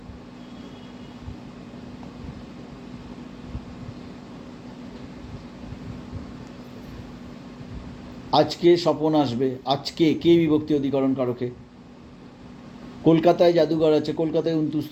আজকে স্বপন আসবে, আজকে, কে বিভক্তি অধিকরণ কারকে। কলকাতায় জাদুঘর আছে, কলকাতায়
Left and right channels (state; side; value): identical; both; correlation 1.00